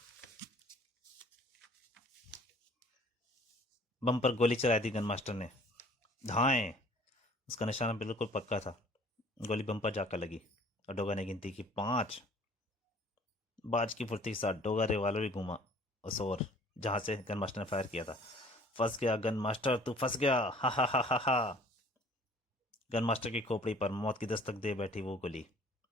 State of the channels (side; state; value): both; normal; correlation 0.53